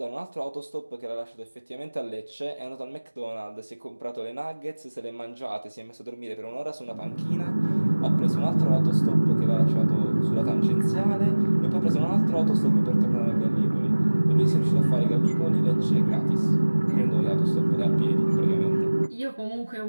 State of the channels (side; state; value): both; inverted; correlation -1.00